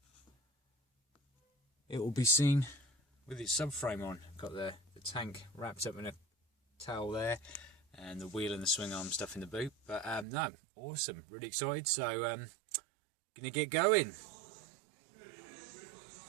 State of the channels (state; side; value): drops out; left; at 10.2 s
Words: it will be seen with its subframe on. Got the tank wrapped up in a towel there, and the wheel and the swing arm stuff in the boot. But no, awesome, really excited. So gonna get going.